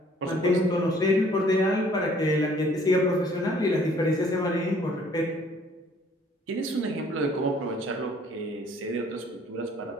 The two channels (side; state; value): both; normal; correlation 0.58